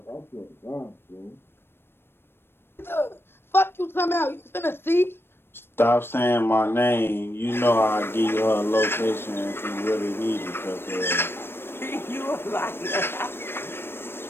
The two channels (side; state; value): right; late; 0.11 ms